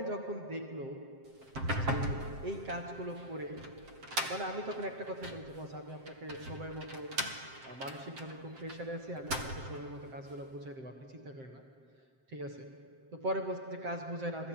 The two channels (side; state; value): left; late; 7.6 ms